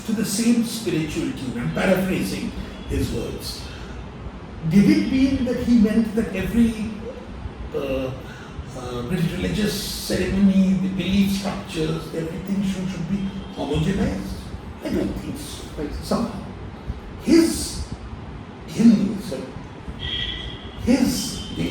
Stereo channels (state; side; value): identical; both; correlation 1.00